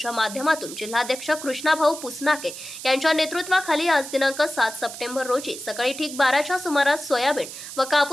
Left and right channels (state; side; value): noise; right; hiss, 11 dB below the sound